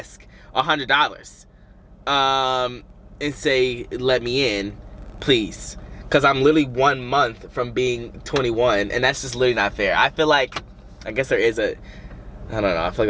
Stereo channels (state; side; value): identical; both; correlation 1.00